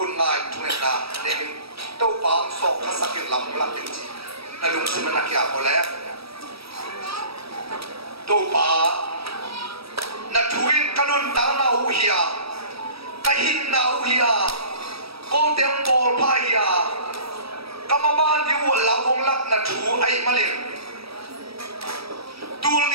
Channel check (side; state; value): left; late; 0.77 ms